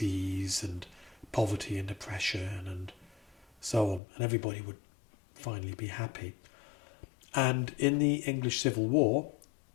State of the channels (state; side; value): drops out; right; at 4.0 s